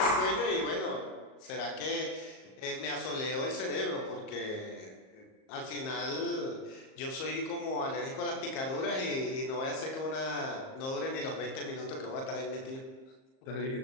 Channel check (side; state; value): right; late; 38 ms